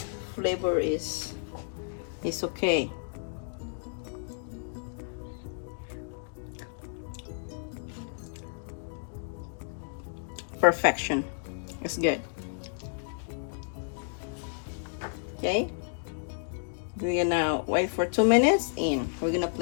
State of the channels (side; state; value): right; silent; digital silence